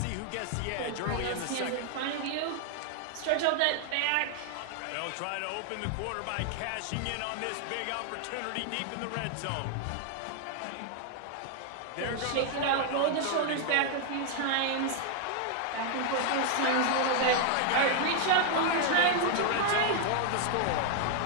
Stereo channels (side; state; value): both; different; correlation 0.00